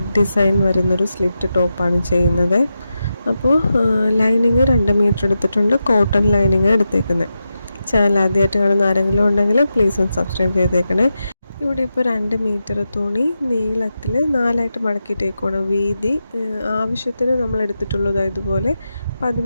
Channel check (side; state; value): both; inverted; correlation -0.89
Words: ഡിസൈൻ വരുന്നൊരു സ്ലിറ്റ് ടോപ്പാണ് ചെയ്യുന്നത്. അപ്പോൾ ലൈനിങ് 2 മീറ്റർ എടുത്തിട്ടുണ്ട്. കോട്ടൺ ലൈനിങ് എടുത്തേക്കുന്നത്. ചാനൽ ആദ്യമായിട്ട് കാണുന്ന ആരെങ്കിലും ഉണ്ടെങ്കിൽ പ്ലീസ് ഒന്ന് സബ്സ്ക്രൈബ് ചെയ്തേക്കണേ. ഇവിടെ ഇപ്പോൾ 2 മീറ്റർ തുണി നീളത്തിൽ 4ആയിട്ട് മടക്കിയിട്ടേക്കുവാണ്. വീതി ആവശ്യത്തിന് നമ്മൾ എടുത്തിട്ടുള്ളത് ഇതുപോലെ